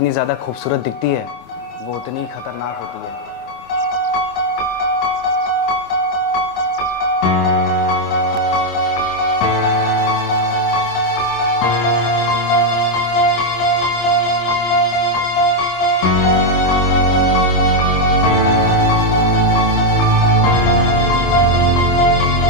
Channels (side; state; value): right; late; 26 ms